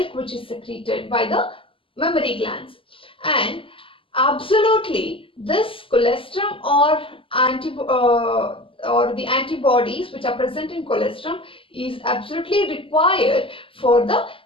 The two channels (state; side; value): late; right; 0.26 ms